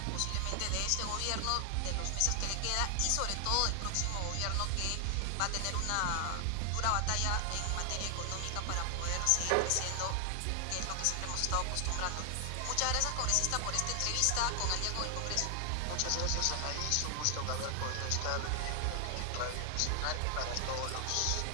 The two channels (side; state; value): both; different; correlation 0.00